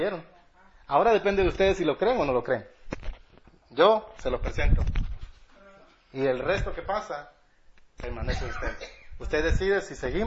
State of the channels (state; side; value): identical; both; correlation 1.00